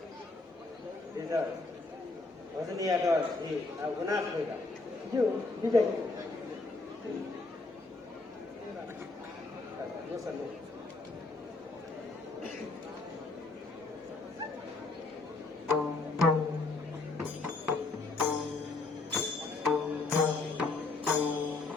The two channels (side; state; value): right; quieter; 3.5 dB